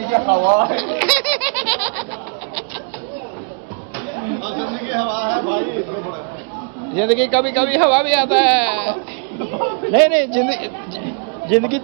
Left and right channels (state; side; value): quieter; left; 39.5 dB